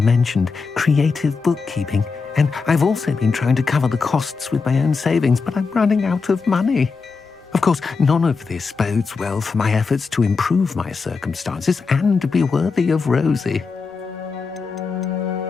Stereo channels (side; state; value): right; quieter; 4.7 dB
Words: mentioned, creative bookkeeping. And I've also been trying to cover the costs with my own savings, but I'm running out of money. Of course, none of this bodes well for my efforts to improve my circumstances and to be worthy of Rosie.